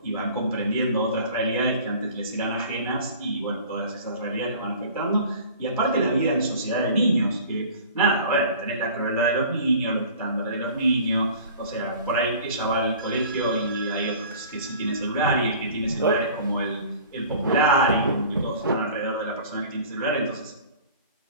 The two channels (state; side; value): inverted; both; correlation -0.45